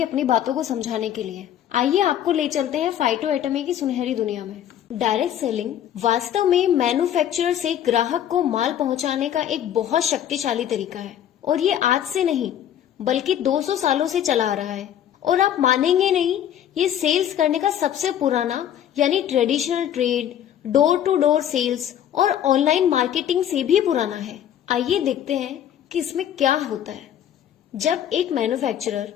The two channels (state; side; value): quieter; right; 10.4 dB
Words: अपनी बातों को समझाने के लिए। आइए आपको ले चलते हैं फाइटो एटॉमी की सुनहरी दुनिया में। डायरेक्ट सेलिंग वास्तव में मैन्युफैक्चरर से ग्राहक को माल पहुंचाने का एक बहुत शक्तिशाली तरीका है, और ये आज से नहीं बल्कि 200 सालों से चला आ रहा है। और आप मानेंगे नहीं, ये सेल्स करने का सबसे पुराना यानी traditional trade, door to door sales और ऑनलाइन मार्केटिंग से भी पुराना है। आइए देखते हैं कि इसमें क्या होता है। जब एक मैन्युफैक्चरर